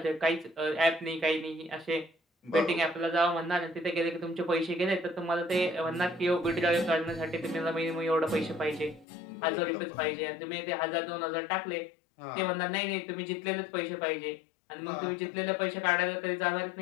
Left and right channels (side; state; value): right; drops out; at 9.1 s